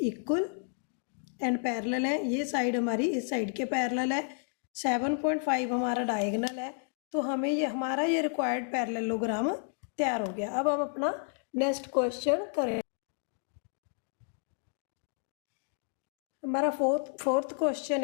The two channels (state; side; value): silent; right; 57 dB below the other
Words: इक्वल एंड पैरेलल है। ये साइड हमारी इस साइड के पैरेलल है। 7.5 हमारा डायगोनल है, तो हमें ये हमारा ये रिक्वायर्ड पैरेललोग्राम तैयार हो गया। अब हम अपना नेक्स्ट क्वेश्चन करें। हमारा फोर्थ क्वेश्चन